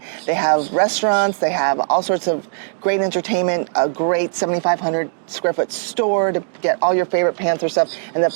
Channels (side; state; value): left; silent; digital silence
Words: They have restaurants, they have all sorts of great entertainment, a great 7,500 square foot store to get all your favorite Panther stuff. And the